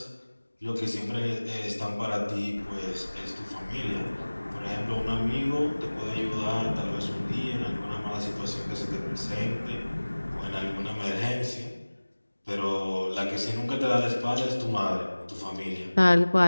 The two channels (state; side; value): inverted; both; correlation -1.00